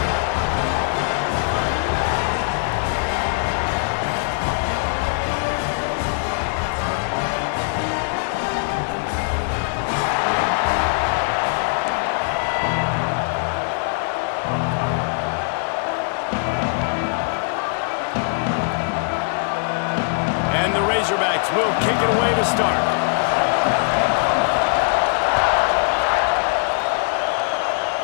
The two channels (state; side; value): silent; right; digital silence